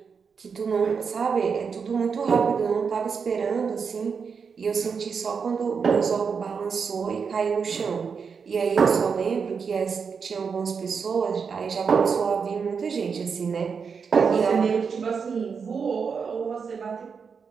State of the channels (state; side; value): quieter; left; 5.9 dB